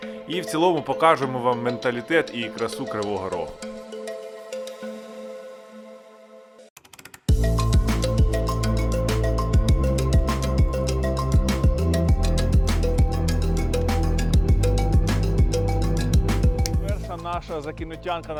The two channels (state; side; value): identical; both; correlation 1.00